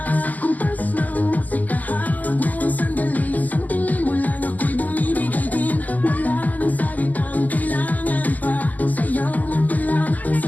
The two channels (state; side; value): late; right; 0.080 ms